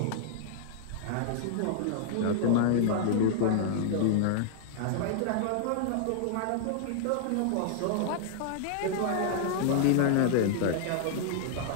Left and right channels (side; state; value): both; different; correlation -0.01